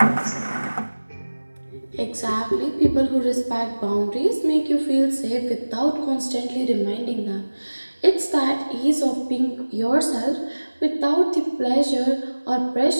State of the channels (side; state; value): both; inverted; correlation -1.00